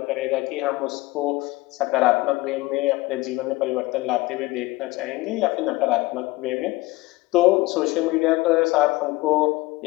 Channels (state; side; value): quieter; right; 20.4 dB